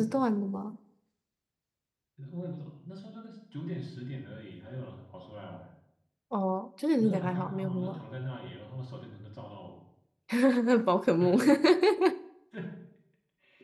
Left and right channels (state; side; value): identical; both; correlation 1.00